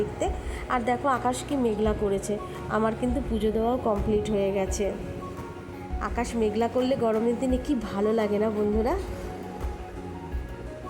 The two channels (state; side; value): identical; both; correlation 1.00